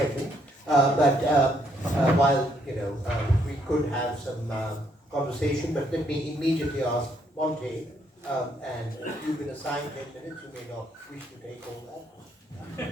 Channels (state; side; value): normal; both; correlation 0.71